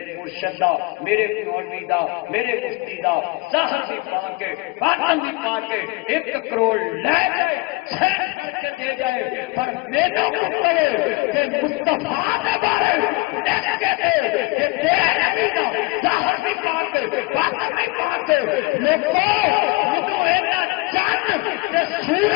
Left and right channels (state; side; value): quieter; right; 25.0 dB